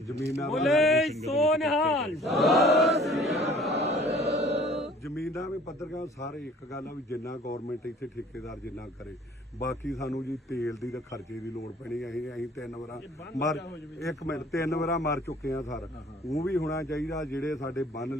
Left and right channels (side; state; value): both; normal; correlation 0.52